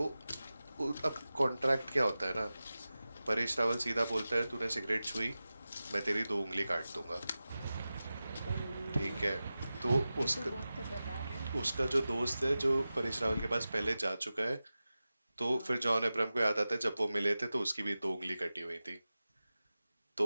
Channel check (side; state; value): both; inverted; correlation -0.95